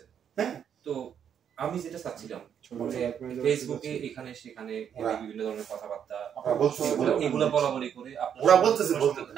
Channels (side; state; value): left; quieter; 8.5 dB